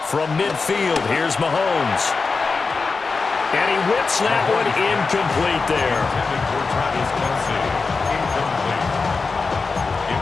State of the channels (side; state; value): right; quieter; 4.4 dB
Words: From midfield, here's Mahomes. And he whips that one incomplete there. It